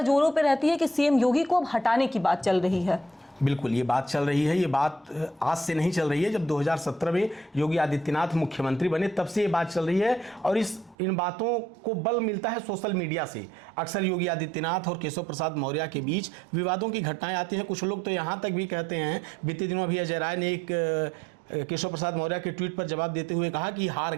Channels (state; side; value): drops out; left; at 11.0 s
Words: जोरों पर रहती है कि सीएम योगी को अब हटाने की बात चल रही है। बिल्कुल, ये बात चल रही है। ये बात आज से नहीं चल रही है। जब 2017 में योगी आदित्यनाथ मुख्यमंत्री बने तब से ये बात चल रही है, और इन बातों को बल मिलता है सोशल मीडिया से। अक्सर योगी आदित्यनाथ और केशव प्रसाद मौर्य के बीच विवादों की घटनाएं आती हैं। कुछ लोग तो यहाँ तक भी कहते हैं, बीते दिनों अभी अजय राय ने एक केशव प्रसाद मौर्य के ट्वीट पर जवाब देते हुए कहा कि हार